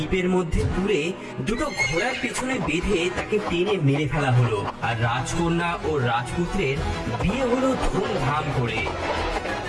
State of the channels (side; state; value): both; identical; correlation 1.00